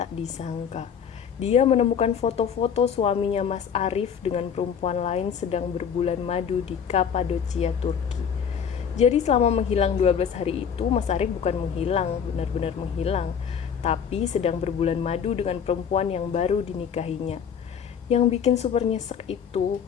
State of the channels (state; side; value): quieter; right; 7.5 dB